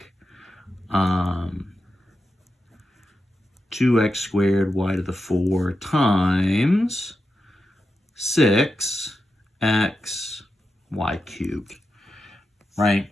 2x squared y to the 4 times 6x y cubed, right?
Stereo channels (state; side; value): normal; both; correlation 0.89